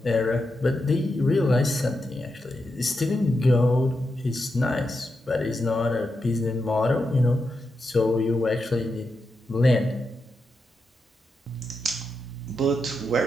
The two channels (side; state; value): both; normal; correlation 0.86